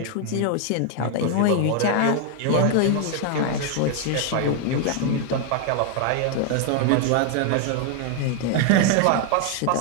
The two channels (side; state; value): both; different; correlation 0.00